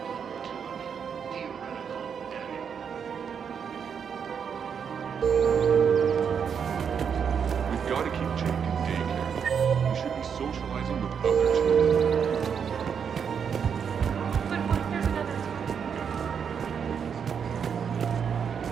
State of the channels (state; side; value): quieter; left; 7.1 dB